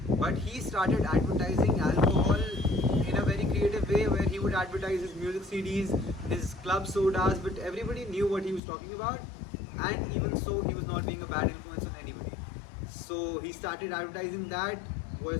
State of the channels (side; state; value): right; drops out; at 8.6 s